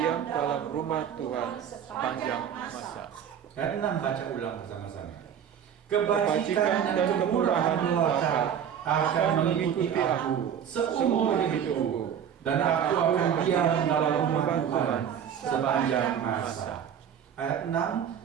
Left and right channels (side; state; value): left; quieter; 8.6 dB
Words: dalam rumah Tuhan sepanjang masa. Ayat 6 baca ulang bersama-sama. Kebajikan dan kemurahan belaka akan mengikuti aku seumur hidupku, dan aku akan diam dalam rumah Tuhan sepanjang masa. Ayat 6,